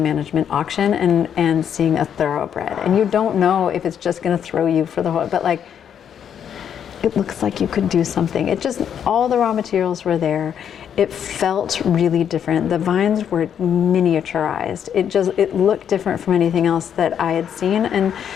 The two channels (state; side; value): quieter; right; 8.7 dB